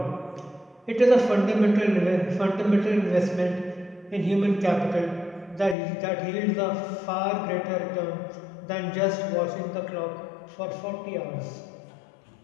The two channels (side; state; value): right; drops out; at 5.8 s